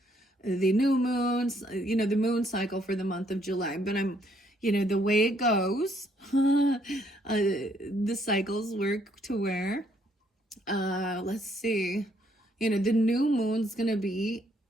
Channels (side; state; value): both; normal; correlation 0.69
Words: the new moons, the moon cycle for the month of July, but the way it goes, the cycles work to where, let's see, the new moon's going to be